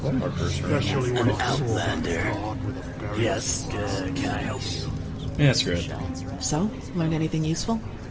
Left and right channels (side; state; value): both; identical; correlation 1.00